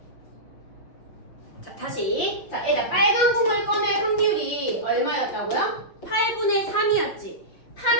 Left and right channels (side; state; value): right; late; 6.2 ms